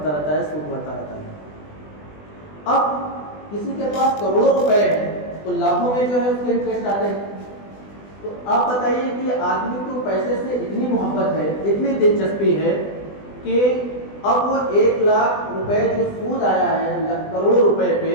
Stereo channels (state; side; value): late; right; 20 ms